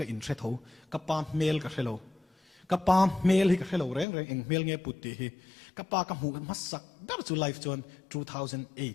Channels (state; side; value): drops out; right; at 4.0 s